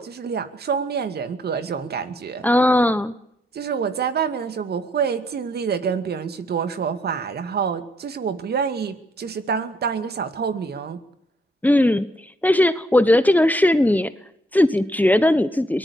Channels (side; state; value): both; normal; correlation 0.71